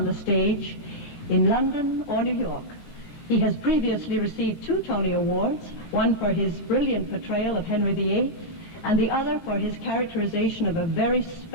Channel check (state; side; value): late; right; 17 ms